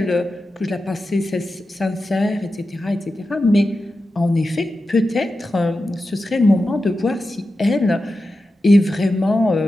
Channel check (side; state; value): both; normal; correlation 0.91